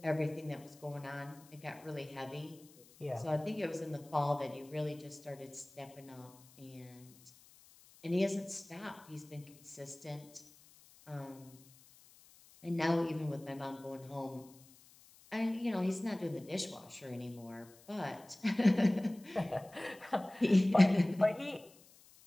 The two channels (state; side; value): noise; left; hiss, 25 dB below the sound